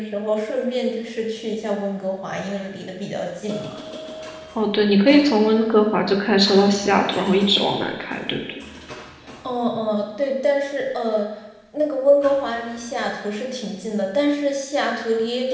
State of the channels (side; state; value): both; identical; correlation 1.00